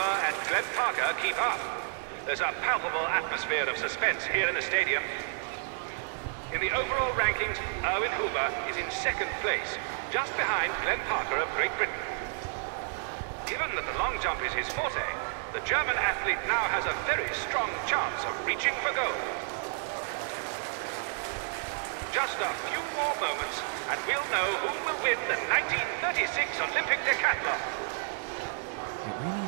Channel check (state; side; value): silent; left; 57 dB below the other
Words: and Glenn Parker keep up? There's a palpable atmosphere of suspense here in the stadium. In the overall rankings, Erwin Huber is in 2nd place, just behind Glenn Parker of Great Britain. Given that the long jump is his forte, the German athlete now has a very strong chance of reaching for gold. Just a few more moments, and we'll know who will win the 1936 Olympic decathlon. It really